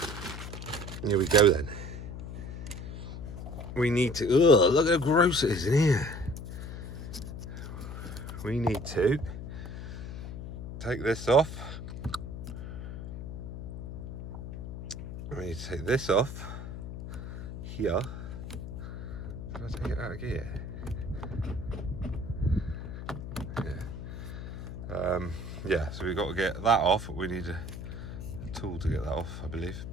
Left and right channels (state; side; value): noise; left; hum, 8 dB below the sound